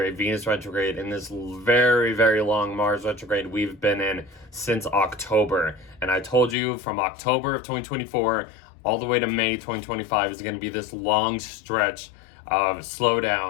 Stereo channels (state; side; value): drops out; right; at 6.6 s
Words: Venus retrograde, and this very, very long Mars retrograde we've been in since October. And I told you from October of 2024 all the way to May 2025 is going to be this long stretch of